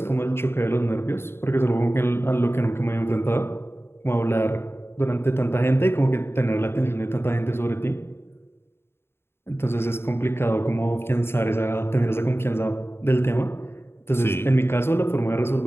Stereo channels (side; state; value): right; late; 0.12 ms